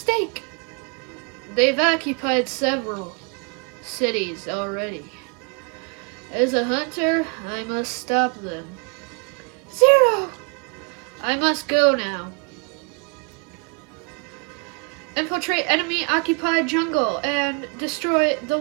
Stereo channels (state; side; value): quieter; left; 34.0 dB